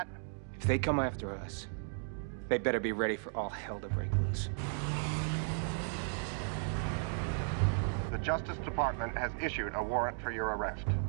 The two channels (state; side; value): silent; left; 54 dB below the other